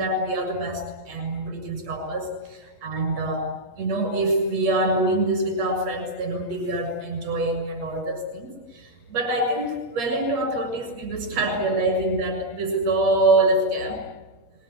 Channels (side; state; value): left; late; 8.5 ms